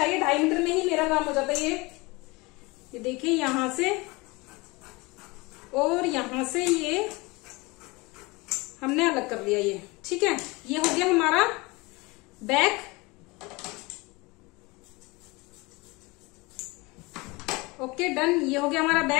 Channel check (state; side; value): quieter; right; 24.6 dB